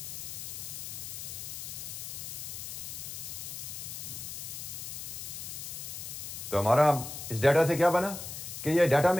तो हमारा इस डाटा से क्या बना कि ये डाटा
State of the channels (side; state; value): left; noise; hiss, 7 dB below the sound